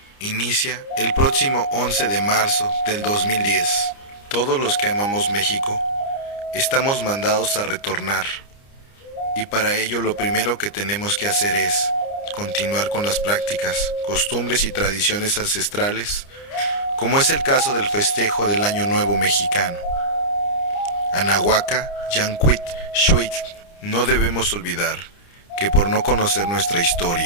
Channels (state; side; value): late; right; 29 ms